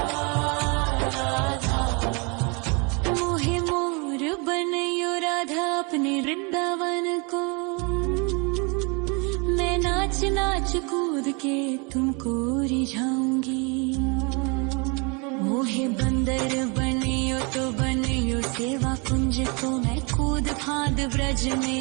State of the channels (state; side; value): quieter; left; 31.9 dB